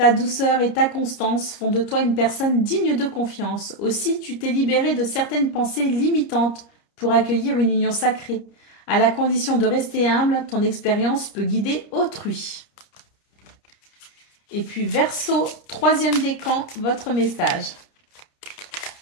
douceur et ta constance font de toi une personne digne de confiance. Aussi, tu t'es libéré de certaines pensées limitantes pour accueillir une union sacrée. À la condition de rester humble, ton expérience peut guider autrui. Et puis Verseau, troisième décan, votre message.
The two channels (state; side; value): late; right; 30 ms